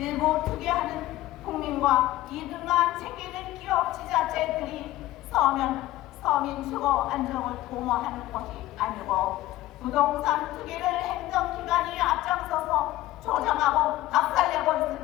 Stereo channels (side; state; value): right; quieter; 16.1 dB